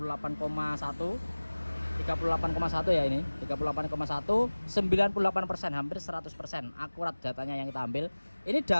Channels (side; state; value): both; inverted; correlation -1.00